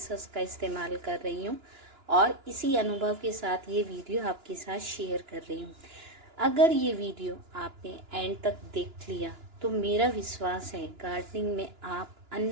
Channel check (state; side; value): late; left; 2.9 ms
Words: हस्क का इस्तेमाल कर रही हूँ और इसी अनुभव के साथ ये वीडियो आपके साथ शेयर कर रही हूँ। अगर ये वीडियो आपने एंड तक देख लिया तो मेरा विश्वास है गार्डनिंग में आप